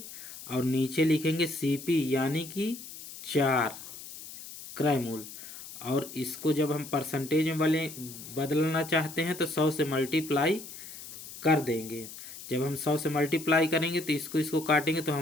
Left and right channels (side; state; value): left; noise; hiss, 13 dB below the sound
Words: और नीचे लिखेंगे सीपी यानी कि 4 क्रय मूल्य। और इसको जब हम परसेंटेज में बदलना चाहते हैं तो 100 से मल्टीप्लाई कर देंगे। जब हम 100 से मल्टीप्लाई करेंगे तो इसको काटेंगे तो